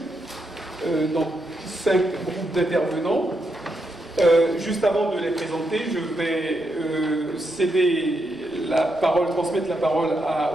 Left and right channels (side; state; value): both; normal; correlation 0.82